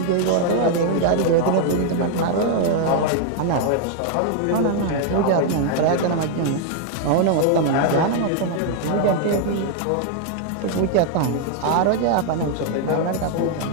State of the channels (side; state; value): both; different; correlation 0.00